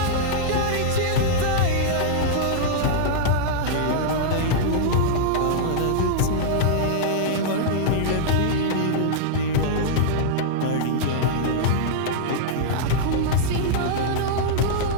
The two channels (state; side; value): different; both; correlation -0.02